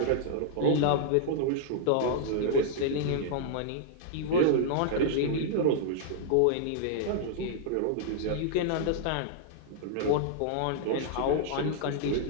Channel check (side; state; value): both; different; correlation -0.01